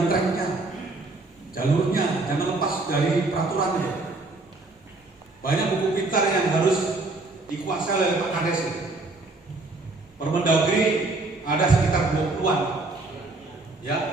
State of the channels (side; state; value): left; quieter; 3.2 dB